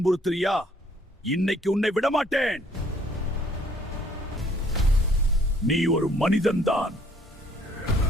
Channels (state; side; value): normal; both; correlation 0.61